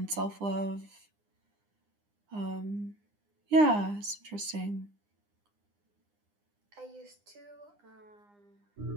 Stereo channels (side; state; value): left; late; 9.8 ms